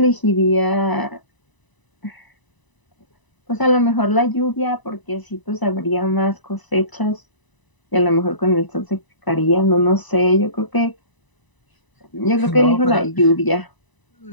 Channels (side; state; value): right; late; 1.0 ms